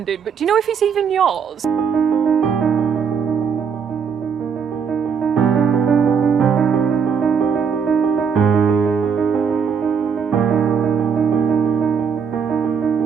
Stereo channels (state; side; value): quieter; left; 6.6 dB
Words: but do you know if it's even yours?